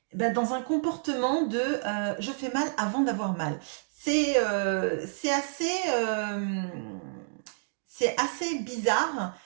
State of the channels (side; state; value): left; silent; digital silence